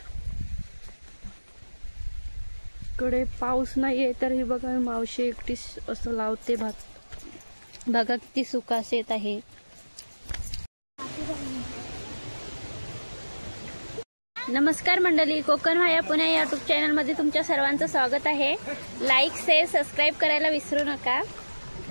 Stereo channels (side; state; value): both; inverted; correlation -1.00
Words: इकडे पाऊस नाहीये तर ही बघा मावशी एकटी असं लावते भात. बघा किती सुका शेत आहे. नमस्कार मंडळी, कोकण माया पुणे या यूट्यूब चॅनल मध्ये तुमच्या सर्वांचं स्वागत आहे. लाईक शेअर सबस्क्राईब करायला विसरू नका.